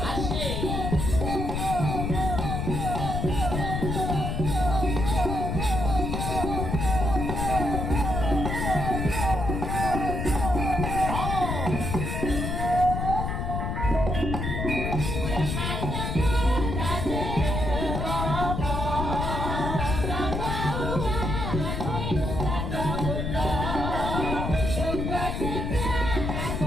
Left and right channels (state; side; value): noise; left; rumble, 2 dB below the sound